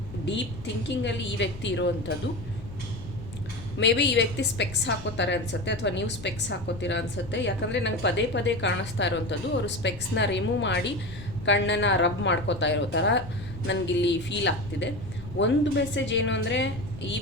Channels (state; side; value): noise; left; rumble, 14 dB below the sound